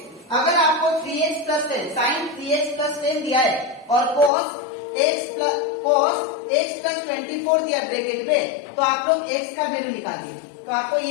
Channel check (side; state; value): right; drops out; at 4.3 s